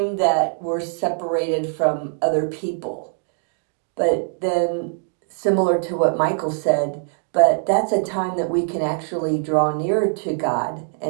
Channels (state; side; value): silent; left; digital silence